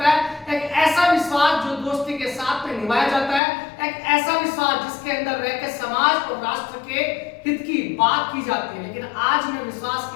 है। एक ऐसा विश्वास जो दोस्ती के साथ में निभाया जाता है। एक ऐसा विश्वास जिसके अंदर रहकर समाज और राष्ट्र के हित की बात की जाती है। लेकिन आज मैं विश्वास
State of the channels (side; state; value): right; drops out; at 3.4 s